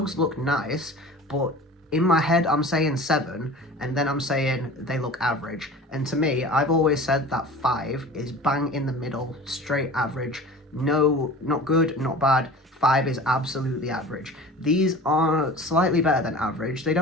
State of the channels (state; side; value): normal; both; correlation 0.39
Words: look nice, but in my head, I'm saying 7, and then I'm saying they look average. And to me, I've always said that 5 is bang in the middle, straight average. No, not good, not bad. 5 is absolutely average. These are slightly better than average. They